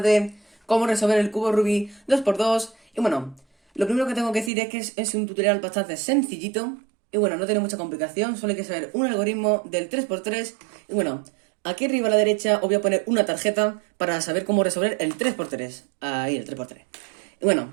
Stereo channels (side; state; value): left; drops out; at 4.5 s